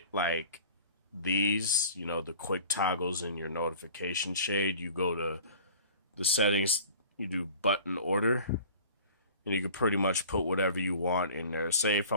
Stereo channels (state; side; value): inverted; both; correlation -0.44